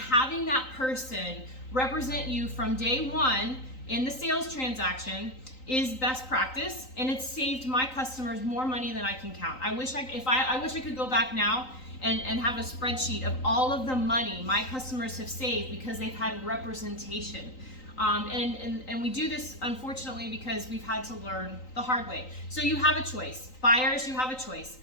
that person represent you from day one in the sales transaction is best practice, and it's saved my customers more money than I can count. I wish I could go back now and have a spreadsheet of all of the money my customers have saved because they've had representation. And we do this, unfortunately, because we've had to learn the hard way. So you have a choice. Buyers, you have a choice.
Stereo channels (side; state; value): right; late; 3.9 ms